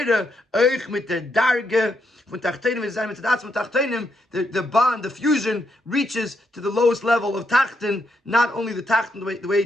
Eich mit der Darge, von Tachtenim is mit der Tachtenim, the bond, the fusion reaches to the lowest level of Tachten, not only the Tachten, the way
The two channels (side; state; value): both; normal; correlation 0.78